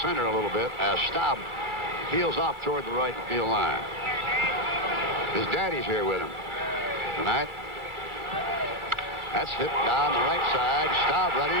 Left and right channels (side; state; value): left; late; 1.4 ms